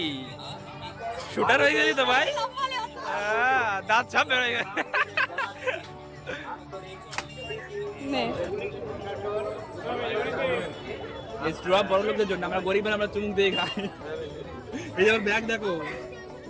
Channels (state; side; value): identical; both; correlation 1.00